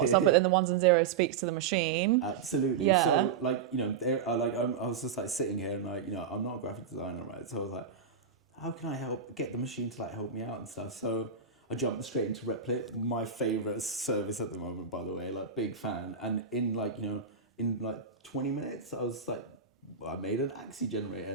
stuff, but then the ones and zeros speaks to the machine. Absolutely. Yeah. So I was just like sitting here and like, I'm not a graphic designer, right? So I was like, how can I get the machine to like help me out and stuff? So I jumped straight into Replit, my favorite service at the moment, by the way, like big fan. And in 20 minutes, I was like, I made an Axie generator,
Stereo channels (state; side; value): quieter; left; 6.2 dB